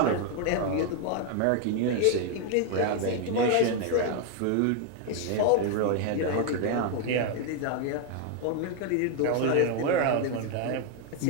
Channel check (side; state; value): both; different; correlation 0.01